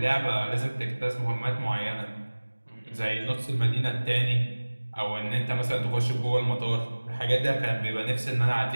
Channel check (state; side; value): inverted; both; correlation -1.00